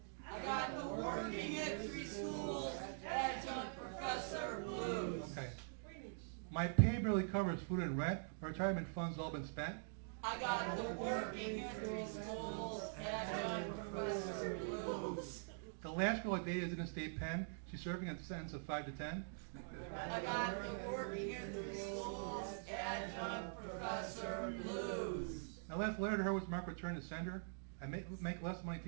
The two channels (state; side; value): silent; left; digital silence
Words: I got the Working in 3 Schools Adjunct Professor Blues. Okay. My pay barely covers food and rent. My retirement funds all been spent. I got the Working in 3 Schools Adjunct Professor Blues. The last girl I dated is in a state pen. She's serving a sentence of 5 to 10. I got the Working in 3 Schools Adjunct Professor Blues. My last letter to her was marked return to sender. I make less money